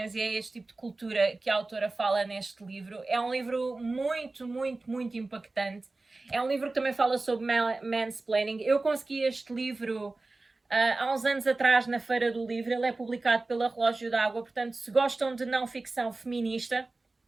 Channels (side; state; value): left; quieter; 3.3 dB